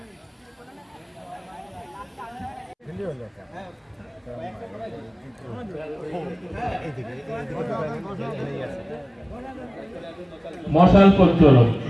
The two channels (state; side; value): identical; both; correlation 1.00